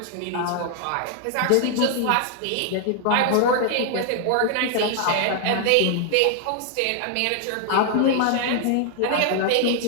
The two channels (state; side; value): different; both; correlation 0.00